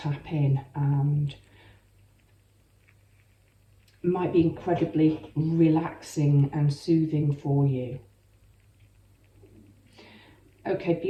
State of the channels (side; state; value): both; identical; correlation 1.00